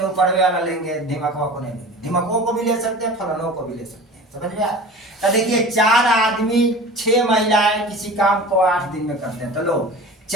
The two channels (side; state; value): both; normal; correlation 0.37